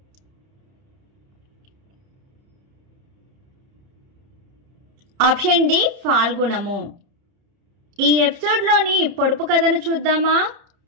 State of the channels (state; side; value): late; left; 30 ms